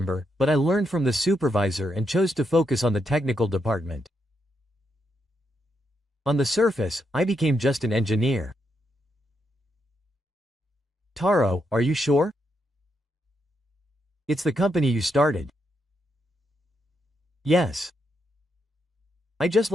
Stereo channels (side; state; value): both; normal; correlation 0.81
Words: but I learned from the supervisor and chose to focus on the technical department. On the surface, I became just an engineer. Taro, are you sure? It's the company you started. Yes. I just